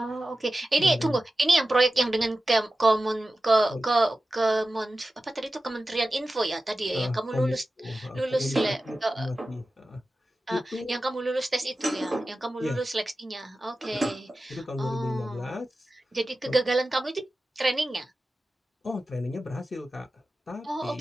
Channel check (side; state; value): both; normal; correlation 0.94